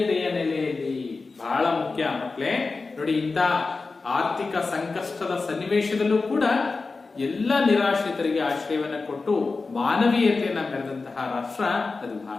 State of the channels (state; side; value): quieter; right; 4.0 dB